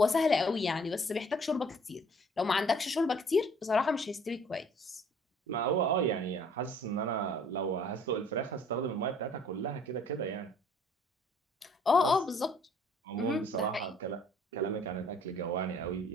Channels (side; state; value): both; normal; correlation 0.57